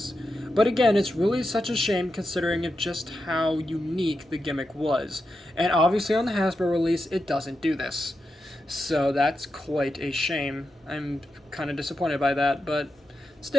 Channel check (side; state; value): both; normal; correlation 0.88